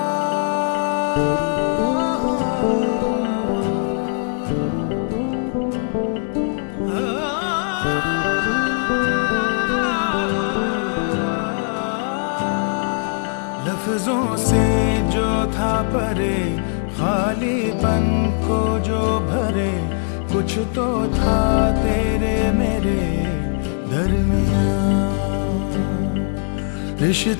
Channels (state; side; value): silent; right; digital silence